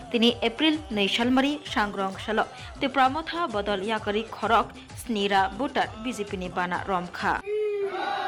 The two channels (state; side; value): identical; both; correlation 1.00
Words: তিনি এপ্রিল 2 সালমারি सांग्रं साल ত্রিপুরা মথা বদল ইয়াকারি খরক স্নিরা বুটার বিজেপিনি বানা রমখা